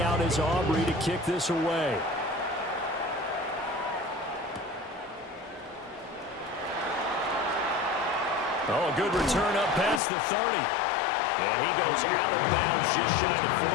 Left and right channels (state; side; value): drops out; right; at 10.0 s